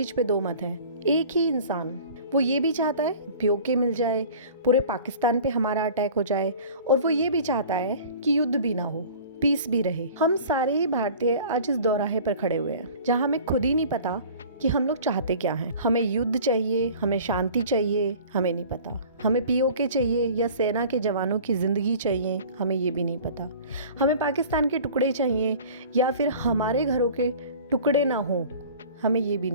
पे दो मत है। एक ही इंसान, वो ये भी चाहता है पीओके मिल जाए, पूरे पाकिस्तान पे हमारा अटैक हो जाए, और वो ये भी चाहता है कि युद्ध भी ना हो, पीस भी रहे। हम सारे ही भारतीय आज इस दोराहे पर खड़े हुए हैं जहाँ हमें खुद ही नहीं पता कि हम लोग चाहते क्या हैं। हमें युद्ध चाहिए, हमें शांति चाहिए, हमें नहीं पता। हमें पीओके चाहिए या सेना के जवानों की ज़िंदगी चाहिए, हमें ये भी नहीं पता। हमें पाकिस्तान के टुकड़े चाहिए या फिर हमारे घरों के टुकड़े ना हो, हमें ये भी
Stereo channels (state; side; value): inverted; both; correlation -0.44